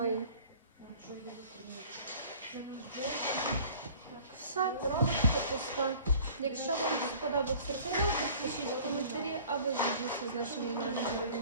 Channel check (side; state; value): both; inverted; correlation -0.48